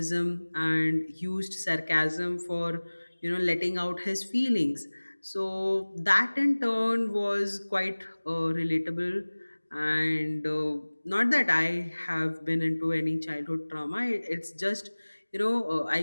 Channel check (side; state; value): both; inverted; correlation -1.00